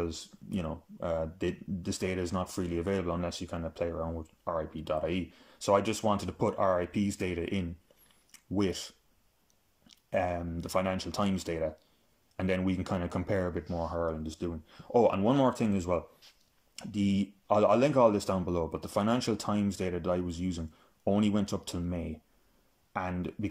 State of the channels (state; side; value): identical; both; correlation 1.00